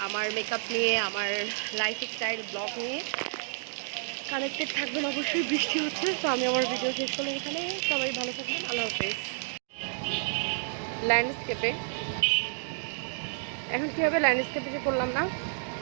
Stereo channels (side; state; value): left; silent; digital silence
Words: আমার মেকআপ নিয়ে, আমার লাইফস্টাইল ব্লগ নিয়ে কানেক্টেড থাকবেন। অবশ্যই বৃষ্টি হচ্ছে, তো আমি আমার ভিডিও শেষ করলাম এখানে। সবাই ভালো থাকবেন, আল্লাহ হাফেজ। ল্যান্ডস্কেপে এখন কী হবে, ল্যান্ডস্কেপে যে করলাম না,